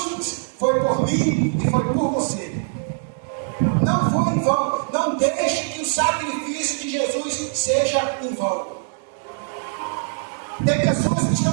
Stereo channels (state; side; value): silent; left; digital silence